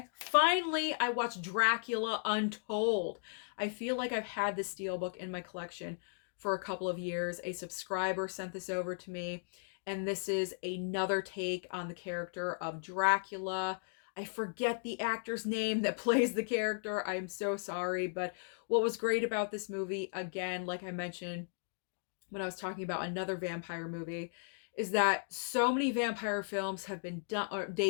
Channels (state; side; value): silent; right; digital silence